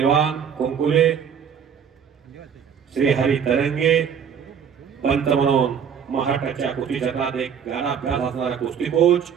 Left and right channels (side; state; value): left; quieter; 7.5 dB